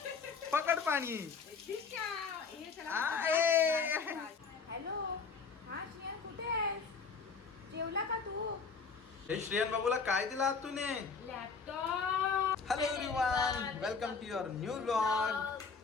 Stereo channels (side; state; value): right; quieter; 5.2 dB